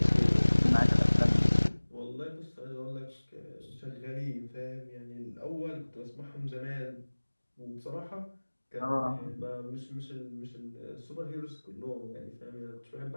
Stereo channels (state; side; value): inverted; both; correlation -1.00